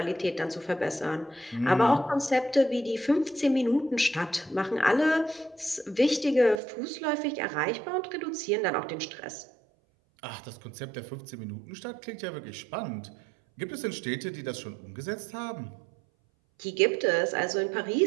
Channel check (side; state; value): left; drops out; at 6.6 s